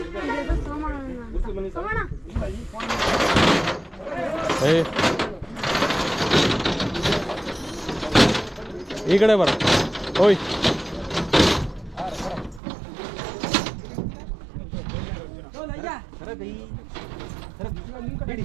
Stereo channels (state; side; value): drops out; left; at 12.6 s